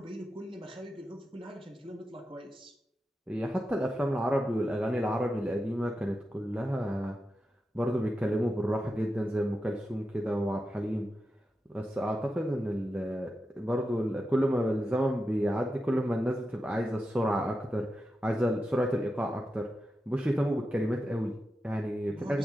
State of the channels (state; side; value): normal; both; correlation 0.89